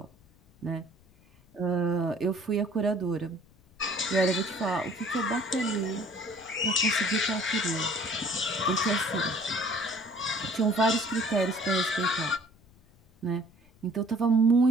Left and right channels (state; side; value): noise; left; rumble, 29 dB below the sound